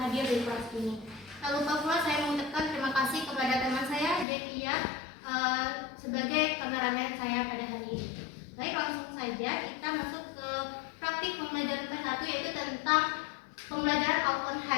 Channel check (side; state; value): right; drops out; at 4.2 s